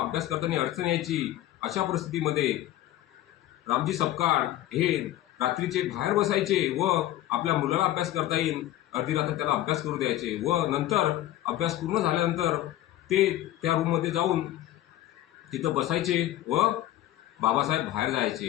करताना अडचण यायची। अशा परिस्थितीमध्ये रामजी सपकाळ हे रात्रीचे बाहेर बसायचे व आपल्या मुलाला अभ्यास करता येईल अर्धी रात्र त्याला अभ्यास करू द्यायचे व नंतर अभ्यास पूर्ण झाल्यानंतर ते त्या रूममध्ये जाऊन तिथं बसायचे व बाबासाहेब बाहेर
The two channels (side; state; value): right; quieter; 14.0 dB